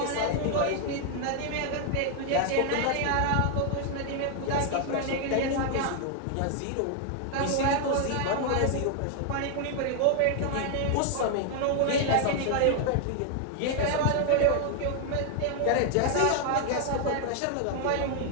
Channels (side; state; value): both; different; correlation 0.00